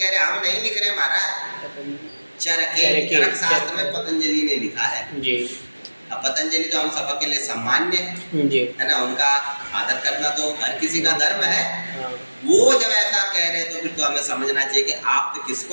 रहे हम नहीं लिख रहे महाराज, चरके चरक शास्त्र में पतंजलि ने लिखा है। अब पतंजलि तो हम सबके के लिए सम्मान्य है ना, उनका आदर करना तो हर किसी का धर्म है। वो जब ऐसा कह रहे तो फिर तो हमें समझना चाहिए कि आप तो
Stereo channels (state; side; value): inverted; both; correlation -1.00